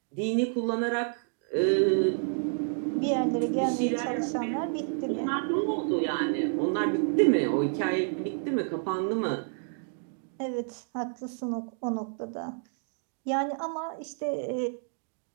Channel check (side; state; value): left; silent; 58 dB below the other